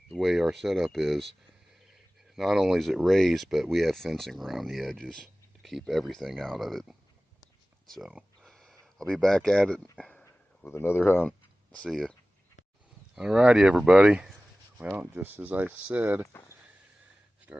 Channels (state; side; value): normal; both; correlation 0.97